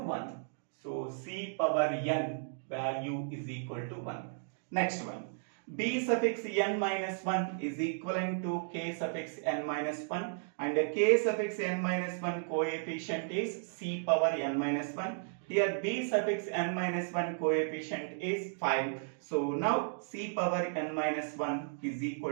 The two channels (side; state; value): left; silent; digital silence